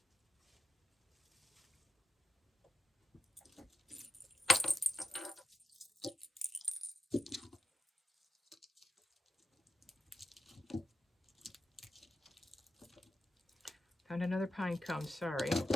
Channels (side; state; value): both; normal; correlation 0.87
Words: Found another pine cone, sorry.